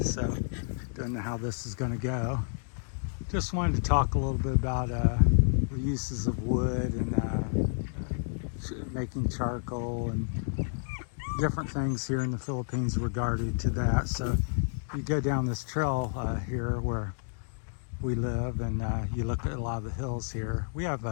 so don't know how this is going to go. Just wanted to talk a little bit about the uses of wood and making charcoal and different things here in the Philippines regarding to that. So you go down this trail here where we live and you look at a lot of the hills here. We have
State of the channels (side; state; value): right; silent; digital silence